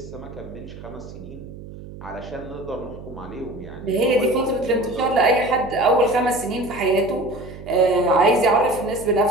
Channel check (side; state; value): right; noise; hum, 14 dB below the sound